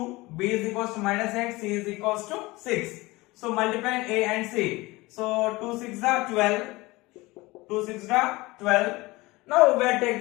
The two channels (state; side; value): quieter; right; 21.6 dB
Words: b is equals to minus 8, c is equals to 6. So multiply a and c. So 2 6 are 12. 2 6 are 12. Now we will take